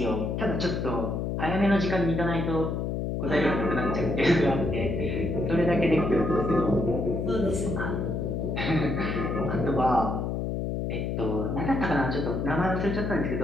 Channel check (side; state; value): left; noise; hum, 1 dB below the sound